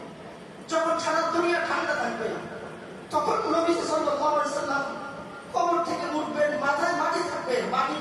যখন সারা দুনিয়া ঠান্ডা থাকবে, তখন নবী সাল্লাল্লাহু আলাইহি ওয়াসাল্লাম কবর থেকে উঠবেন, মাথায় মাটি থাকবে, মাটি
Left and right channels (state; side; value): identical; both; correlation 1.00